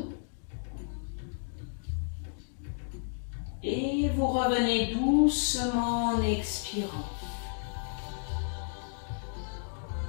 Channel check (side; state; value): right; silent; digital silence